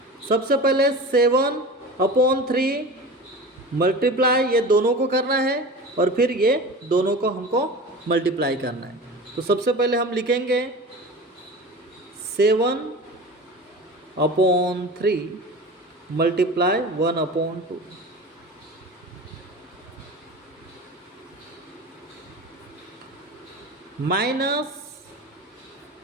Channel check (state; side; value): normal; both; correlation 0.34